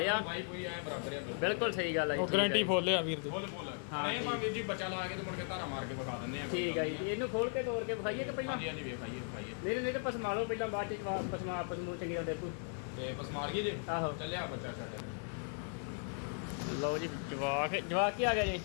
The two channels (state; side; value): silent; right; 53 dB below the other